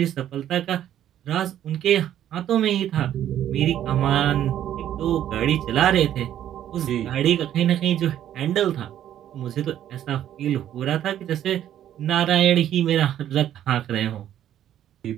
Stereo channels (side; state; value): left; quieter; 11.2 dB